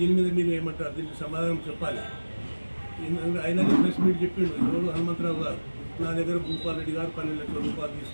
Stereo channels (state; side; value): inverted; both; correlation -1.00